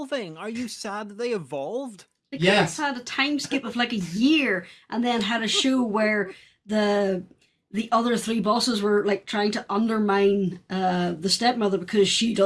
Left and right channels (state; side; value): identical; both; correlation 1.00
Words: Are you sad that they evolved? They could have Yes. had a time skip of like a year and then had a show where the other 3 bosses were like trying to undermine the stepmother because she